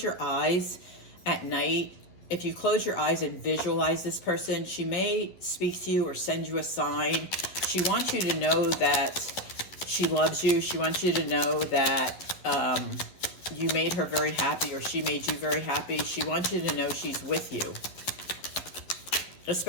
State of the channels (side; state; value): right; late; 11 ms